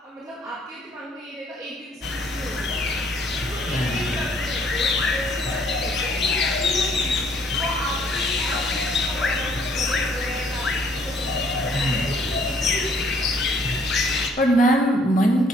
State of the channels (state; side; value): normal; both; correlation 0.63